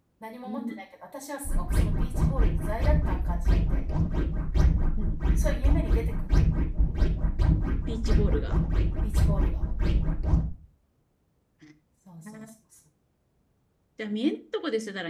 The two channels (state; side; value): identical; both; correlation 1.00